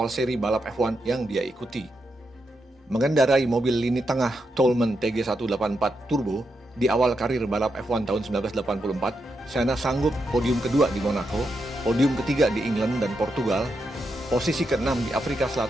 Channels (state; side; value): normal; both; correlation 0.84